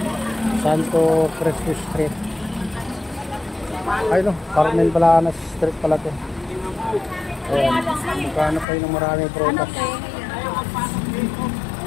Santo Cristo Street. Ay no, Carmen-Planos Street pala to. Ayan, magkano kayo ng maraming prutas.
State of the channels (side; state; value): right; drops out; at 8.7 s